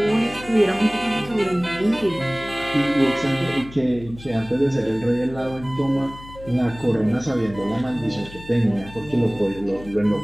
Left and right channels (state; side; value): noise; left; hum, 17 dB below the sound